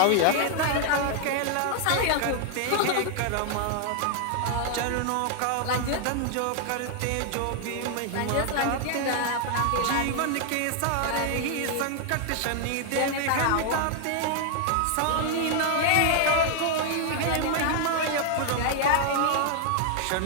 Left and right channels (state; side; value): different; both; correlation 0.00